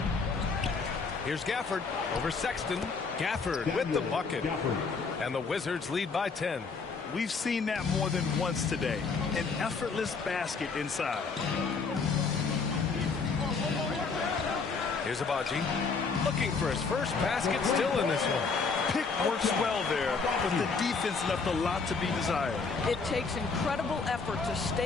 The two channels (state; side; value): quieter; right; 4.7 dB